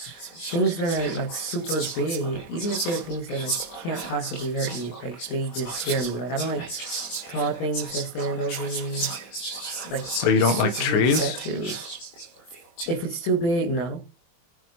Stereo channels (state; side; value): late; right; 24 ms